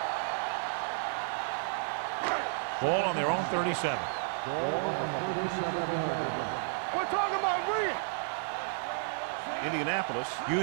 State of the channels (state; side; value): silent; left; digital silence